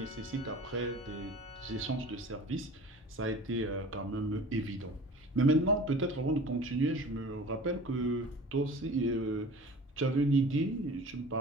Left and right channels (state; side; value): normal; both; correlation 0.41